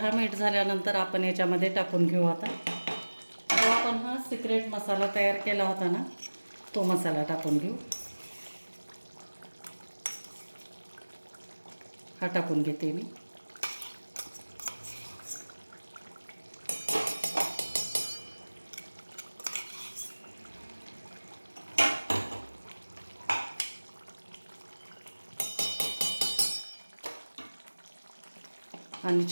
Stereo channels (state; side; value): inverted; both; correlation -1.00